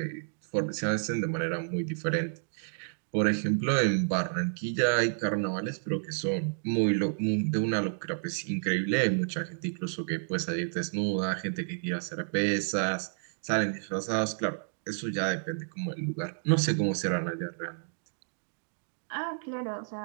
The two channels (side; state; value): left; silent; digital silence